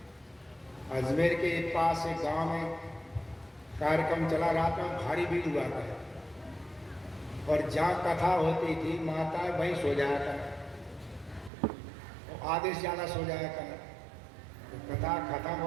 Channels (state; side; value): drops out; left; at 11.5 s